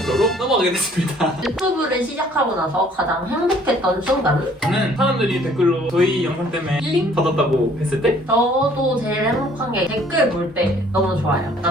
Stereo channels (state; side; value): normal; both; correlation 0.58